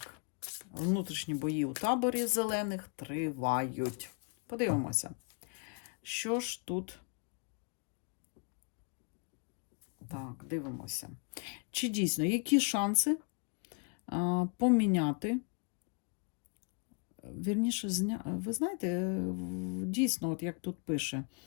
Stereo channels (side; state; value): right; quieter; 35.8 dB